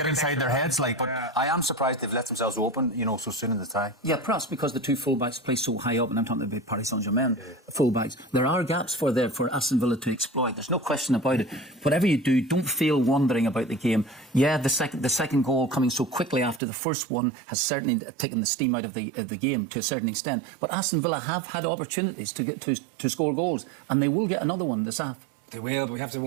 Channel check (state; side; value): drops out; left; at 16.6 s